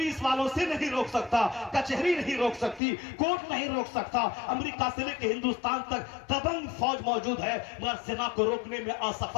والوں سے نہیں روک سکتا، کچہری نہیں روک سکتی، کورٹ نہیں روک سکتا، امریکہ سے لے کے ہندوستان تک دبنگ فوج موجود ہے مگر زنا کو روکنے میں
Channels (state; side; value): drops out; right; at 2.8 s